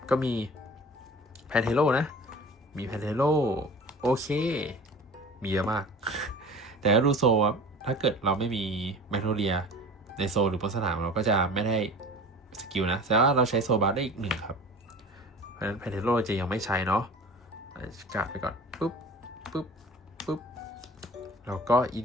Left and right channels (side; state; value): both; normal; correlation 0.40